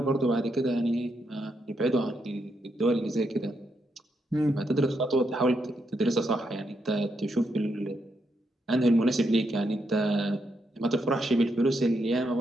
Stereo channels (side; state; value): both; normal; correlation 0.80